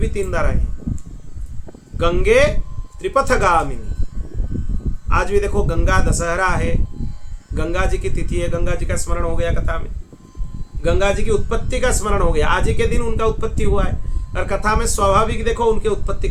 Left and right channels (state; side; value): identical; both; correlation 1.00